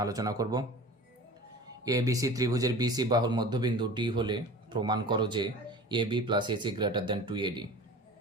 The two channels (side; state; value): both; normal; correlation 0.39